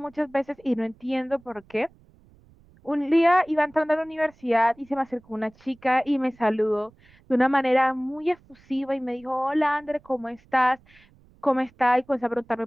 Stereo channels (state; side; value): noise; right; rumble, 29 dB below the sound